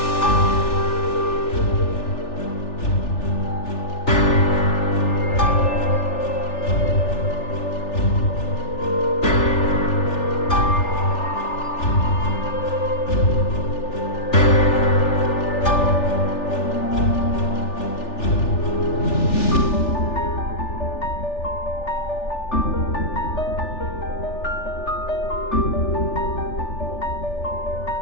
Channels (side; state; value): right; late; 3.4 ms